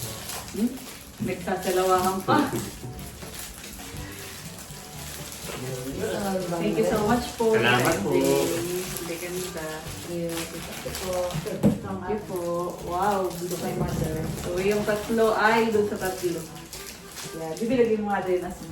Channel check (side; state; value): both; identical; correlation 1.00